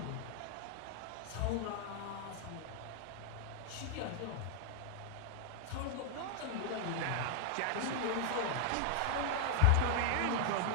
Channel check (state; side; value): different; both; correlation 0.00